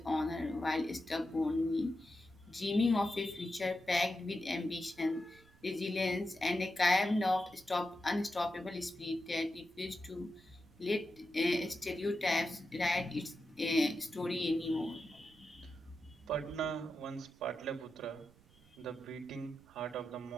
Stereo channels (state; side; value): noise; right; rumble, 27 dB below the sound